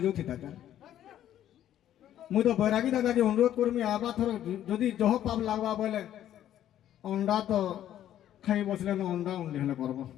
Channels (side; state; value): right; quieter; 11.5 dB